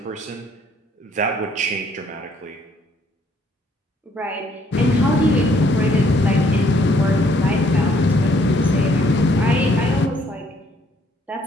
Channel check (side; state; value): both; normal; correlation 0.65